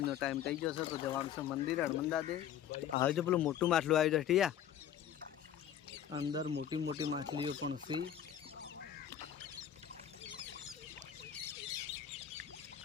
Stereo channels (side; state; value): right; quieter; 10.0 dB